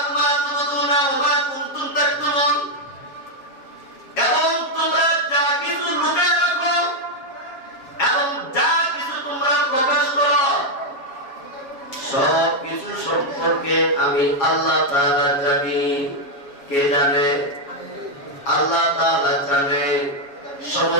এবং তোমরা যা কিছু লুকায় রাখো আমি আল্লাহ তাআলা জানি। কে জানে? আল্লাহ তাআলা জানে।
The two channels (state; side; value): late; right; 7.2 ms